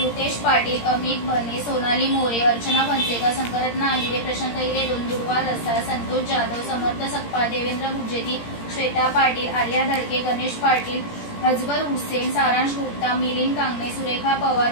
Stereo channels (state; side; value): late; right; 17 ms